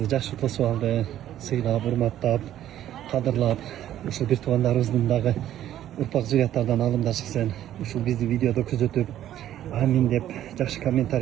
жакшы тосуп алды, сыйлап, урматтап, кадырлап, ушул бир туугандарыбыздын дагы урпак зурияттардан алымдар чыксын. Ушул бизди видеодо күзөтүп, амин деп жакшы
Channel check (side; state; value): left; quieter; 12.0 dB